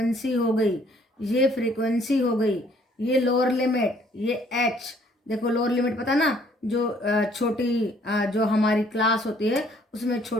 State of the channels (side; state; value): both; normal; correlation 0.62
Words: हो गई, ये फ्रीक्वेंसी हो गई, ये लोअर लिमिट, ये h। देखो लोअर लिमिट पता ना, जो छोटी जो हमारी क्लास होती है उसमें